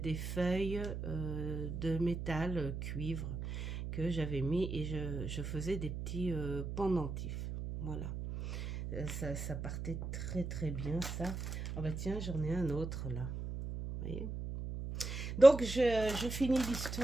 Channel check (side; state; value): right; noise; hum, 5 dB below the sound